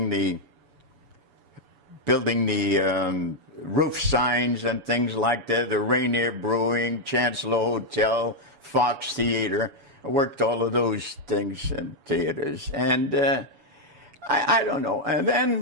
the roof signs and things like that, the Rainier Brewing, Chancellor Hotel, Fox Theater. I worked all of those things in theaters, and I don't know. And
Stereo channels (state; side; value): late; left; 7.0 ms